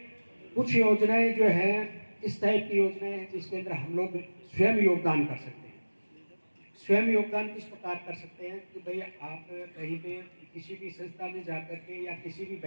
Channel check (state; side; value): inverted; both; correlation -1.00